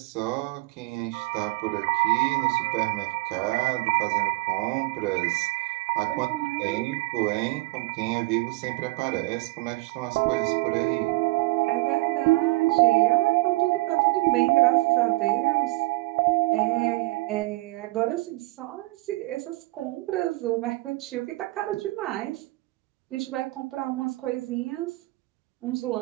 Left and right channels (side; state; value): left; quieter; 22.1 dB